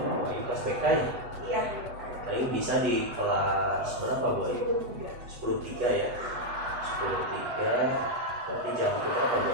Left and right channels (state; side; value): late; left; 8.1 ms